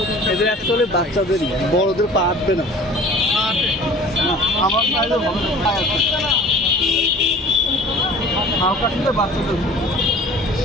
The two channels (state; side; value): normal; both; correlation 0.46